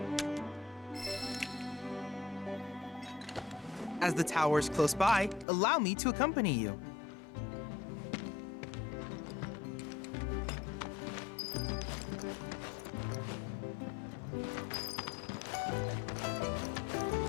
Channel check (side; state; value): right; drops out; at 5.5 s